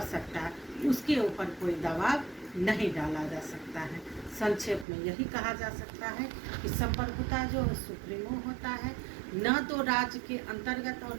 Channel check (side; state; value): left; drops out; at 4.9 s